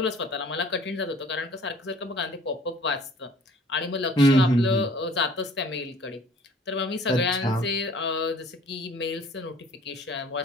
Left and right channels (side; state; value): both; normal; correlation 0.52